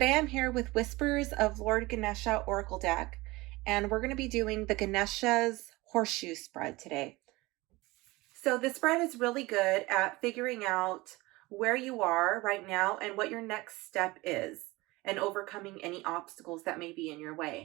I'm here with Whispers of Lord Ganesha Oracle Deck, and we're going to be doing the Ganesha's Horseshoe spread today. So this spread is really good at figuring out where you are right now and what your next step is, and overcoming any obstacles that may be in your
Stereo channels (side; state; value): left; quieter; 21.4 dB